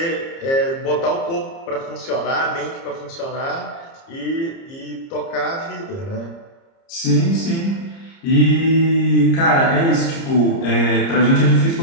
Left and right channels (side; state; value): right; late; 30 ms